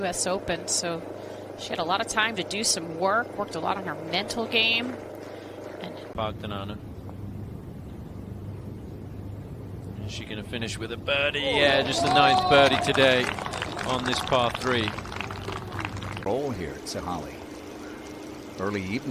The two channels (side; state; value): both; identical; correlation 1.00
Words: Open, so she had a lot of time to do some work, worked a lot on her mental game. And Bogdanana. Is she going to finish with a birdie? Yeah, just a 9th birdie today on this par 3. Roll here at Sahali. Early